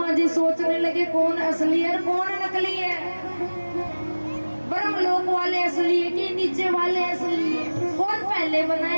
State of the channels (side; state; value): both; inverted; correlation -1.00